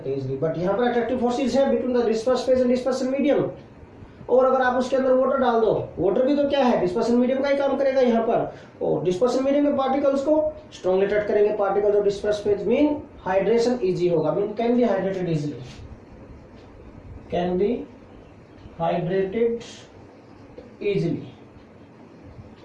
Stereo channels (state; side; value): identical; both; correlation 1.00